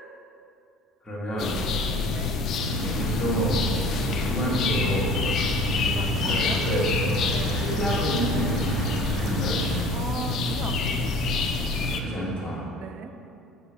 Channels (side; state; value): both; normal; correlation 0.45